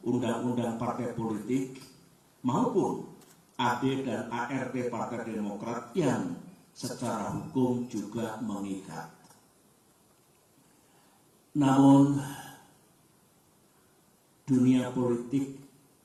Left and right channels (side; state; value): both; identical; correlation 1.00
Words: Undang-Undang Partai Politik, maupun AD dan ART Partai Demokrat yang secara hukum juga mengikat. Namun, dunia politik